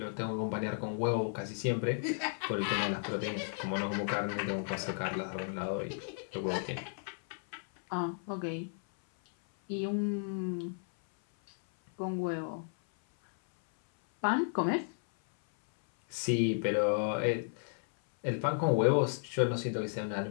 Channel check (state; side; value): silent; right; 55 dB below the other